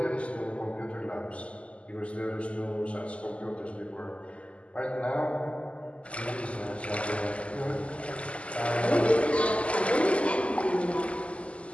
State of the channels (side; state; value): right; late; 0.059 ms